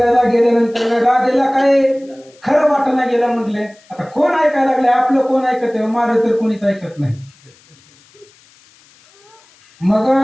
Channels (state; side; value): noise; left; hiss, 30 dB below the sound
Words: गेल्यानंतर राधेला काय खरं वाटणं गेलं. म्हटले आता कोण ऐकायला लागले, आपलं कोण ऐकत आहे? माझं तर कोणीच ऐकत नाही. मग